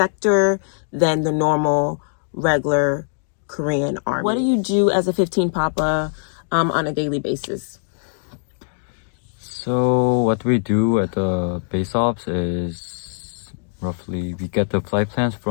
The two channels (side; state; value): right; silent; digital silence